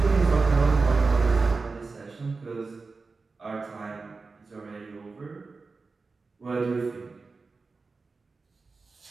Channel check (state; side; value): quieter; left; 4.1 dB